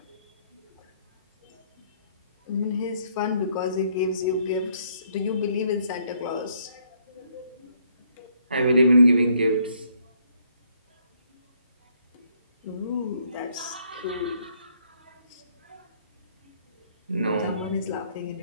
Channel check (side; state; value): both; inverted; correlation -0.68